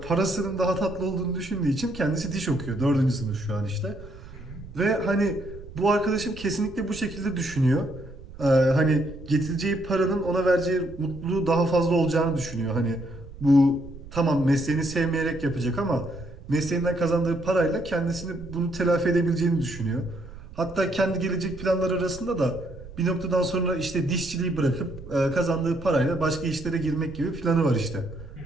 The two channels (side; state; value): right; noise; rumble, 15 dB below the sound